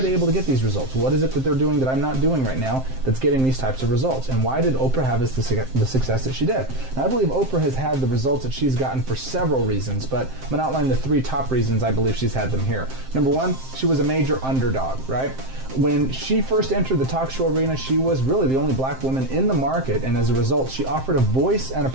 they able to get these results? What is it that they're doing that I'm not doing right now that's getting these types of results? And why did Oprah have the success that she did? Now, I believe Oprah has had the results that she's gotten for several reasons, but I'm going to outline the 3 top reasons I believe she's had them here. Number 1, she was a major underdog, right? When she first entered the talk show arena, she was really the only black woman in the market, and as a result, she offered a voice and a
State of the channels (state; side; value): late; left; 7.6 ms